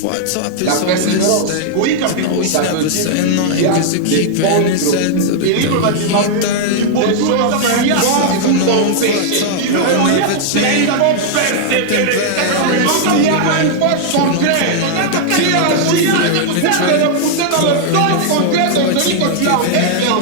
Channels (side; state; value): both; different; correlation -0.01